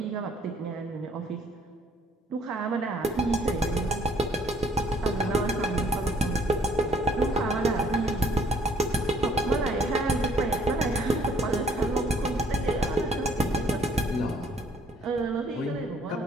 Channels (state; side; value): normal; both; correlation 0.62